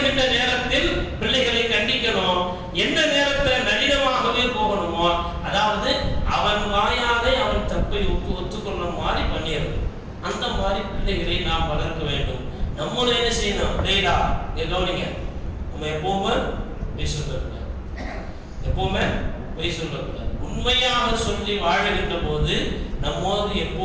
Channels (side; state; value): both; identical; correlation 1.00